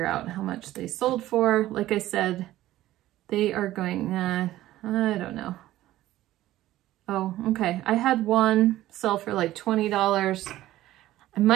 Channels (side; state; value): left; quieter; 15.0 dB